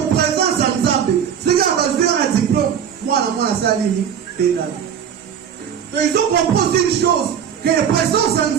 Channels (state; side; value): quieter; left; 8.3 dB